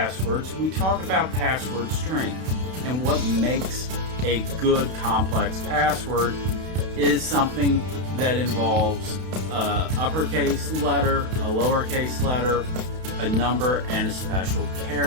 we talk about password strength. And what makes a good complex password is something that involves an uppercase letter, a lowercase letter, a number, and a special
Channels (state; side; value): late; left; 32 ms